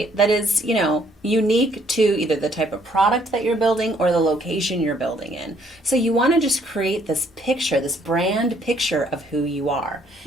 that is, unique to either the type of product that you're building or the location you're building in. So you want to just create this picture, this brand picture of who you are.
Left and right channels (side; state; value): both; normal; correlation 0.65